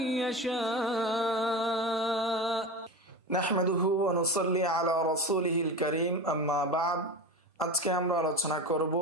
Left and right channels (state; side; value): normal; both; correlation 0.26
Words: يشاء نحمده ونصلي على رسوله الكريم أما بعد আজকে আমরা আলোচনা করব